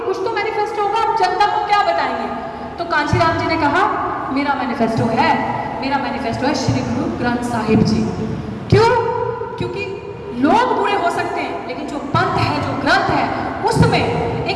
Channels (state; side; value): identical; both; correlation 1.00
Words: कुछ तो मैनिफेस्टो होगा, आप जनता को क्या बताएंगे? तो कांशीराम जी ने कहा मेरा मैनिफेस्टो है श्री गुरु ग्रंथ साहिब जी। क्यों? क्योंकि लोग बुरे हो सकते हैं लेकिन जो पंथ है, जो ग्रंथ है, उसमें